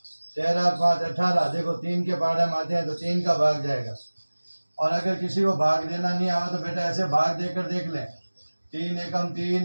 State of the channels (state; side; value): inverted; both; correlation -1.00